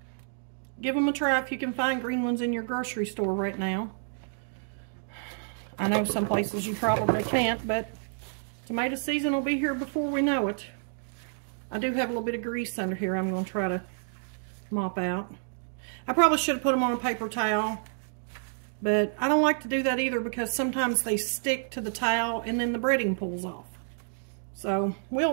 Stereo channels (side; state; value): left; silent; digital silence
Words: them a try if you can find green ones in your grocery store right now. I know some places you probably can't, but tomato season will be here before we know it. I do have a little bit of grease under here I'm going to try to mop out. I probably should have put them on a paper towel, but I don't like to do that either because sometimes they stick to the towel and then the breading pulls off. So